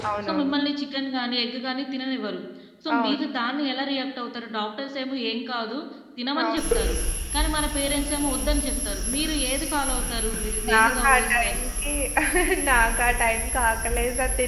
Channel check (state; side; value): identical; both; correlation 1.00